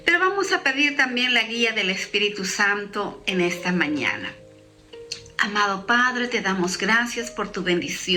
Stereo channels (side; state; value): both; identical; correlation 1.00